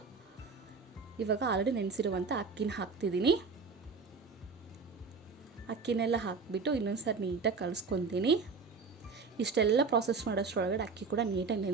ಇವಾಗ ಆಲ್ರೆಡಿ ನೆನೆಸಿರುವಂಥ ಅಕ್ಕಿನ ಹಾಕ್ತಿದ್ದೀನಿ. ಅಕ್ಕಿನೆಲ್ಲ ಹಾಕಿಬಿಟ್ಟು ಇನ್ನೊಂದು ಸರಿ ನೀಟಾಗಿ ಕಲಿಸ್ಕೊತೀನಿ. ಇಷ್ಟೆಲ್ಲ ಪ್ರಾಸೆಸ್ ಮಾಡೋಷ್ಟರೊಳಗಡೆ ಅಕ್ಕಿ ಕೂಡ ನೀಟಾಗಿ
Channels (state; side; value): quieter; left; 4.8 dB